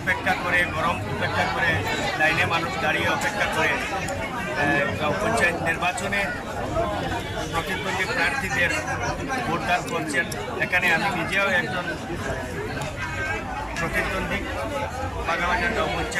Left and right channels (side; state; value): both; identical; correlation 1.00